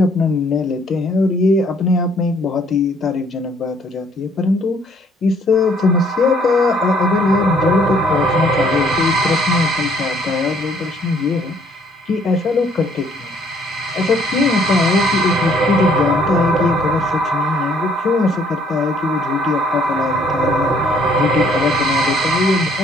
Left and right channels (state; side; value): normal; both; correlation 0.63